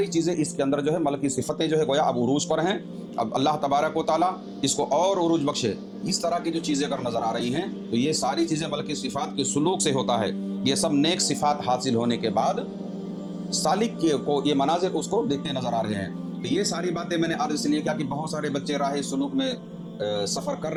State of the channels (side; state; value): both; identical; correlation 1.00